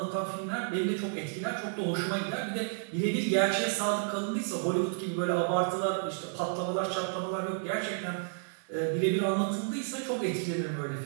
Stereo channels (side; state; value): left; silent; digital silence